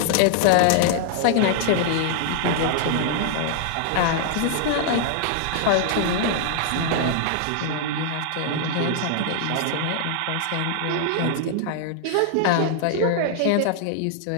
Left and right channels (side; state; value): both; different; correlation 0.00